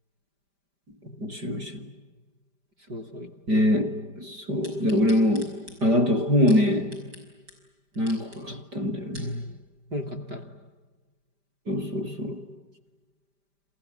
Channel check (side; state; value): left; late; 5.0 ms